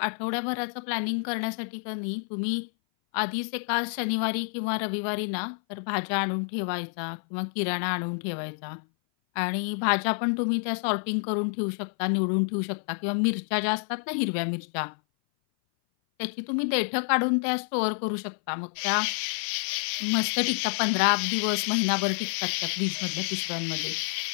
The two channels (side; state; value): right; silent; 57 dB below the other